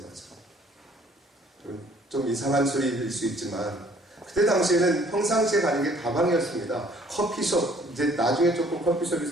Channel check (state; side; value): normal; both; correlation 0.59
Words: 좀 이상한 소리일 수 있지만 그때 당시에는 평상시에 가는 게 다방이었습니다. 커피숍, 이제 나중에 조금 커피숍이